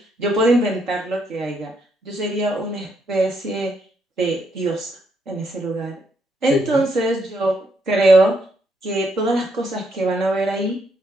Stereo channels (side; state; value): both; normal; correlation 0.75